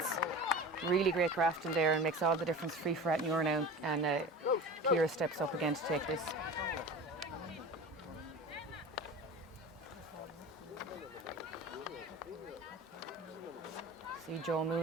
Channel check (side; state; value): both; normal; correlation 0.34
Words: Really great grafting there, and makes all the difference. Free for Rathnure now, and Ciara steps up again to take this. See Joe